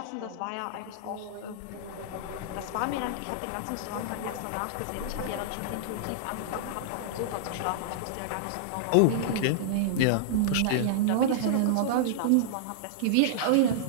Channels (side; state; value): both; different; correlation -0.01